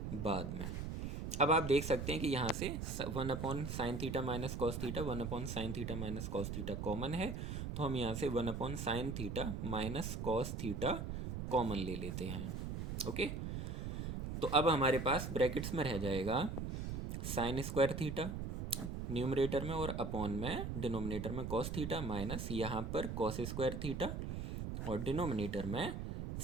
बाद में। अब आप देख सकते हैं कि यहाँ से one upon sine theta minus cos theta, one upon sine theta minus cos theta common है, तो हम यहाँ से one upon sine theta minus cos theta common ले लेते हैं। ओके, तो अब हमारे पास ब्रैकेट्स में रह जाएगा साइन स्क्वायर थीटा न्यूमरेटर में और अपॉन में डिनोमिनेटर में कॉस थीटा माइनस यहाँ पर कॉस स्क्वायर थीटा और डिनोमिनेटर में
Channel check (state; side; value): noise; right; rumble, 4 dB below the sound